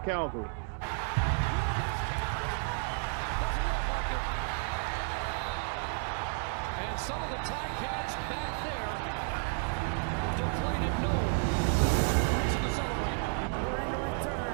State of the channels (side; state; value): left; silent; 56 dB below the other